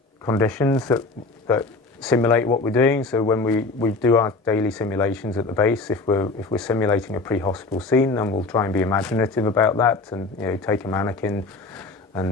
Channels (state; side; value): quieter; right; 3.6 dB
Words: conditions that simulate what we're doing. So when we do our daily simulations at the base, if we're simulating a pre-hospital scene, then we'll try and be imaginative about that, and take a mannequin